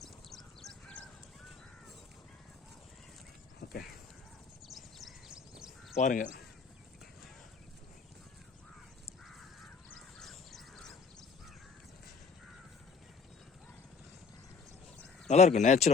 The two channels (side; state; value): right; quieter; 5.2 dB